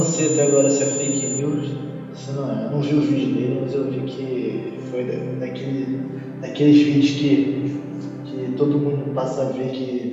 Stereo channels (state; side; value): identical; both; correlation 1.00